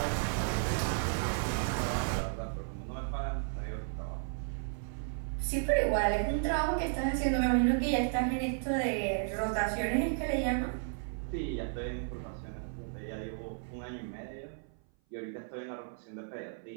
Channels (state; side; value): silent; left; 55 dB below the other